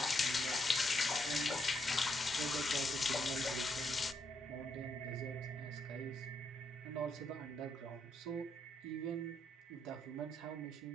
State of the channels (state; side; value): normal; both; correlation 0.77